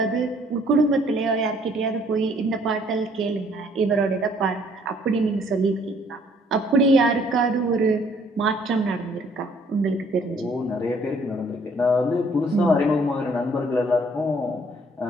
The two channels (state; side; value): normal; both; correlation 0.62